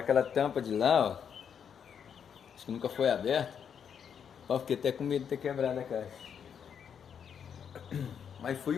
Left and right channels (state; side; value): quieter; right; 7.7 dB